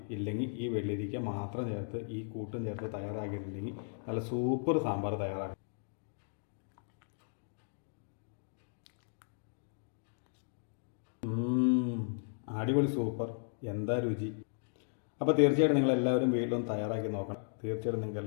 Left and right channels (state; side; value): silent; right; digital silence